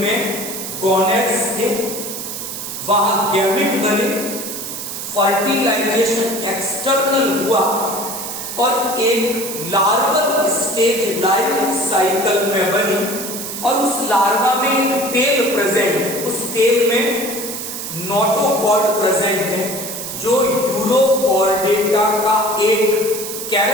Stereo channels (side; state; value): right; noise; hiss, 7 dB below the sound